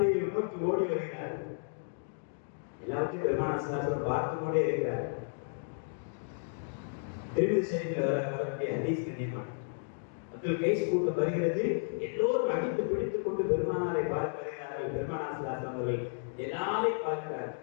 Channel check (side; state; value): right; silent; digital silence